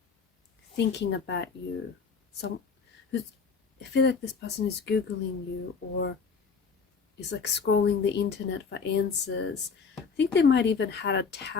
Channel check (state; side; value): quieter; right; 5.4 dB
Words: thinking about you. I feel like this person is Googling you, or is like scrolling the internet for answers. I think they might even had a